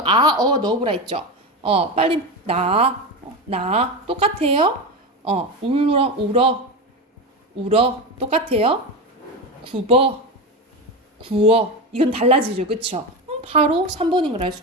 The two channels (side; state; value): both; normal; correlation 0.19